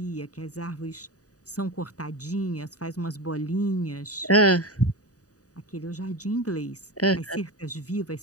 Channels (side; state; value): right; late; 0.67 ms